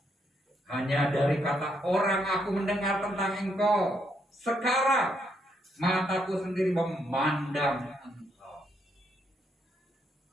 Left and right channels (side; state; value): both; normal; correlation 0.76